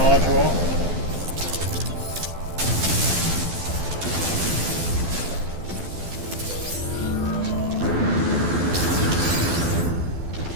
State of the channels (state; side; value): late; left; 12 ms